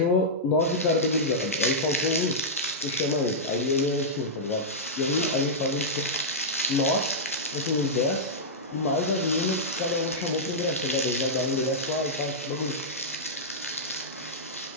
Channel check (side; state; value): both; normal; correlation -0.10